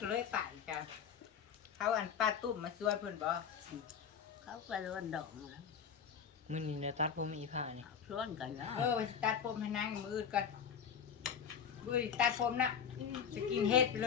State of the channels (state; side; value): quieter; right; 7.4 dB